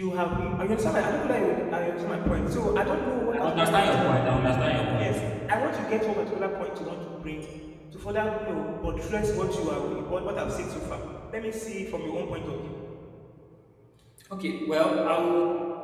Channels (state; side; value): identical; both; correlation 1.00